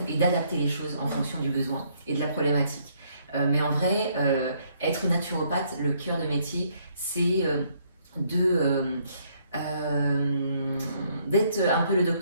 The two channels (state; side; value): inverted; both; correlation -0.68